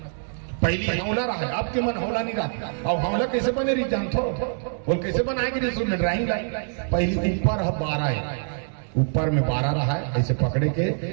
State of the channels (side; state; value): left; silent; digital silence